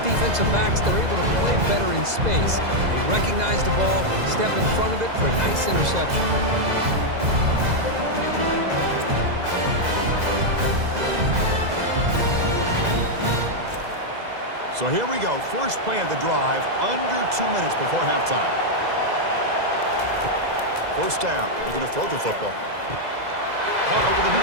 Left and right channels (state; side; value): late; left; 2.0 ms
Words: defensive backs, they're able to play better in space. They recognize the ball, step in front of it for a nice interception. So here we go. First play of the drive, under 2 minutes before halftime. First down. They're going to throw the football. Caught over the